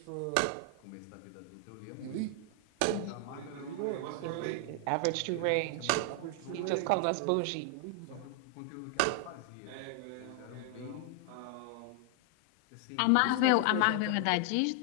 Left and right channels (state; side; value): different; both; correlation 0.00